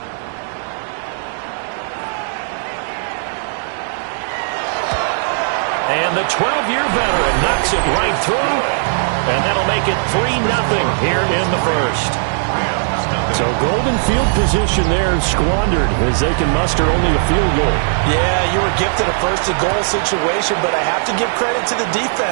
And the 12-year veteran knocks it right through. And that'll make it 3-0 here in the first. So golden field position there squandered as they can muster only a field goal. Yeah, you were gifted a first-and-goal situation, but I have to give credit to the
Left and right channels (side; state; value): left; silent; digital silence